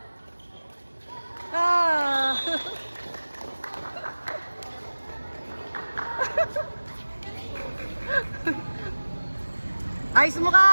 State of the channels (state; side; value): inverted; both; correlation -1.00